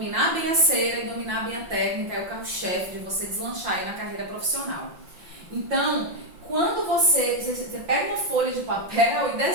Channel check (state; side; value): late; left; 5.7 ms